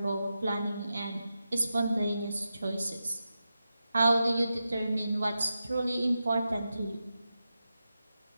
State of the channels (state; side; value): inverted; both; correlation -0.90